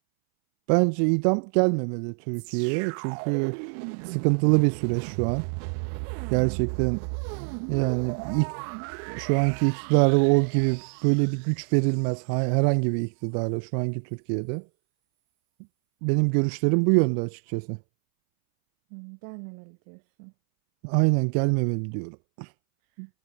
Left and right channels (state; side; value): silent; left; 62 dB below the other